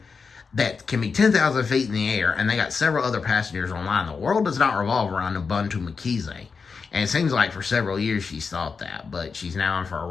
that can be 10,000 feet in the air, and they got several other passengers online. The world does not revolve around Nobuntu Mkhize, and it seems like for several years she's thought that, but she's now in for a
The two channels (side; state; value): right; quieter; 5.2 dB